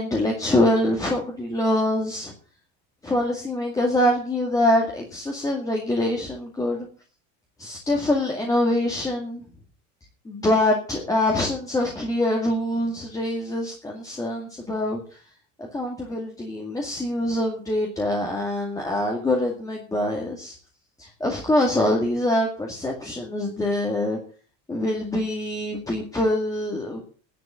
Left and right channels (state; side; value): normal; both; correlation 0.63